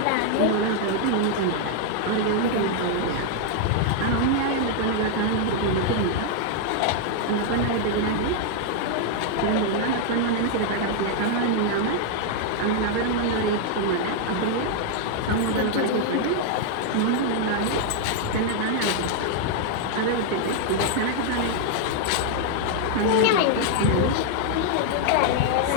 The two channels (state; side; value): different; both; correlation 0.00